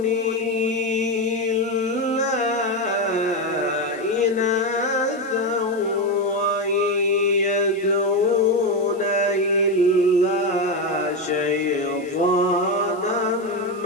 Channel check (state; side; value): noise; left; hiss, 26 dB below the sound